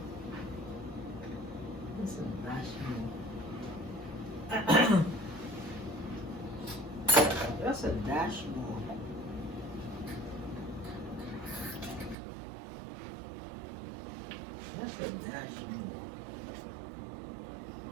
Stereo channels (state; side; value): drops out; left; at 12.2 s